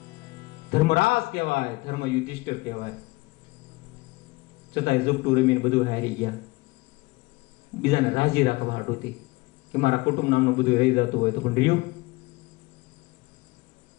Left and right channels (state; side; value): quieter; right; 23.1 dB